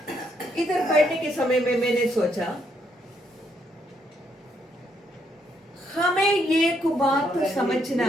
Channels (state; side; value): normal; both; correlation 0.74